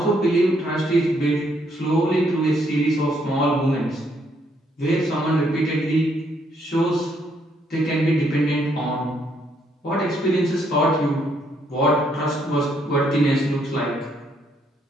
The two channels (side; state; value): both; normal; correlation 0.72